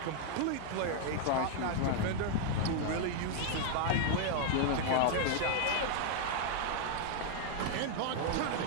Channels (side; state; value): both; different; correlation 0.00